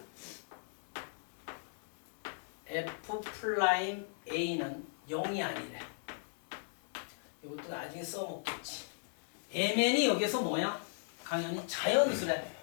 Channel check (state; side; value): silent; right; digital silence